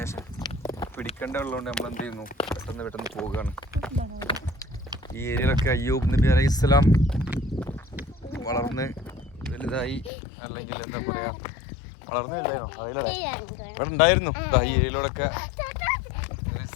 പിടിക്കേണ്ടതുള്ളതുകൊണ്ട് നമ്മൾ എന്ത് ചെയ്യുന്നു, പെട്ടെന്ന് പോവുകയാണ്. ഈ ഏരിയയിലൊക്കെ അയ്യൂബ് നബി അലൈഹി ഇസ്ലാം വളർന്ന് വലുതായി, അല്ലെങ്കിൽ എന്താ പറയുക, വളർന്ന് വലുതായിരുന്നോ ഇവിടെ ഉണ്ടായിരുന്നു. ഈ ഏരിയയിലൂടെയൊക്കെ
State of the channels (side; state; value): right; drops out; at 10.1 s